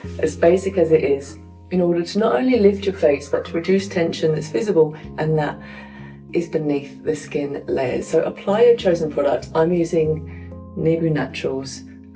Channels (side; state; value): both; identical; correlation 1.00